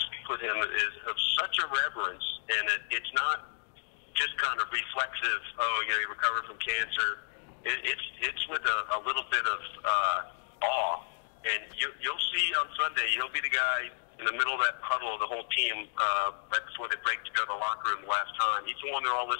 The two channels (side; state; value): right; silent; digital silence